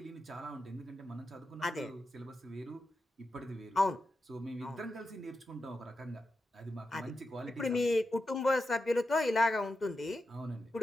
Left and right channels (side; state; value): both; normal; correlation 0.89